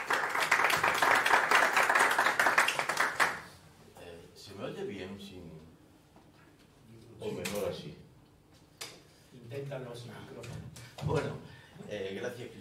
¿Se me oye bien sin... o mejor así? Inténtalo sin micrófono. Bueno, gracias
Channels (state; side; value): identical; both; correlation 1.00